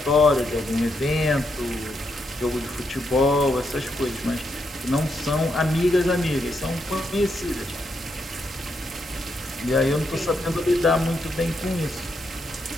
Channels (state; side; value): normal; both; correlation 0.81